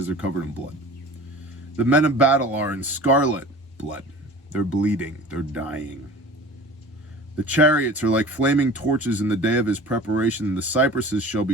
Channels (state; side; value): normal; both; correlation 0.41